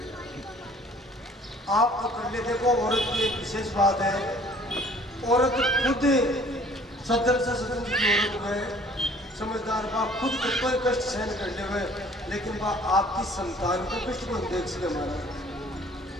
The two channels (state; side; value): normal; both; correlation 0.54